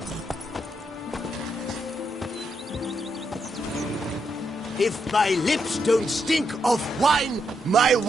If my lips don't stink of wine, my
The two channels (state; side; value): normal; both; correlation 0.80